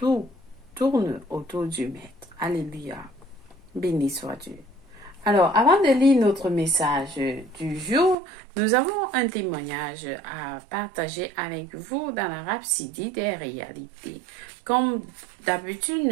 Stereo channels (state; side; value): drops out; left; at 8.2 s